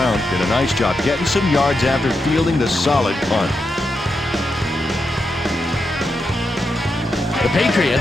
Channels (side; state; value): both; normal; correlation 0.86